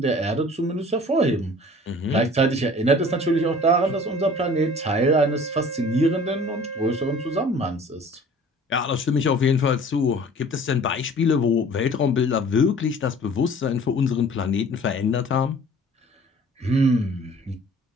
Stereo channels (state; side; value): normal; both; correlation 0.47